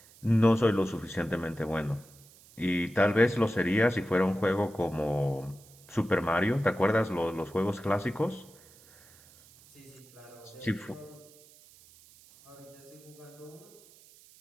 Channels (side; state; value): right; noise; hiss, 25 dB below the sound